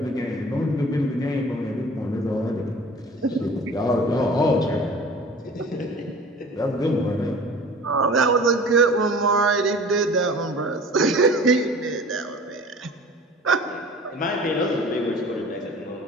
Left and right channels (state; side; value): normal; both; correlation 0.44